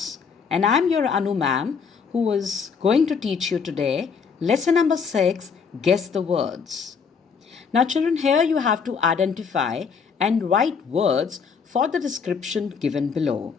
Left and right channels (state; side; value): quieter; right; 5.9 dB